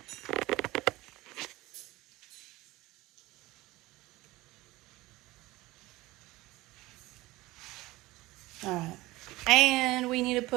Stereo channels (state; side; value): quieter; left; 19.5 dB